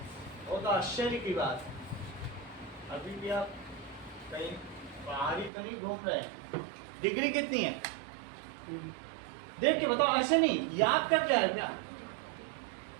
वो तो आश्चर्य की बात। अभी भी आप कहीं बाहर ही तो नहीं घूम रहे हैं। डिग्री कितनी है देख के बताओ, ऐसे नहीं याद कर जाए क्या?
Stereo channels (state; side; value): drops out; left; at 5.5 s